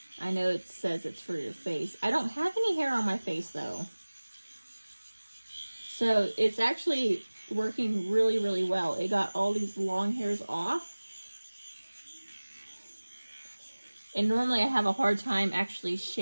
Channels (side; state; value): both; inverted; correlation -1.00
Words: I know it says it's for your face. I don't have any hair on my face though. So it's actually working really, really well. It got all these long hairs off. And normally I have a hard time actually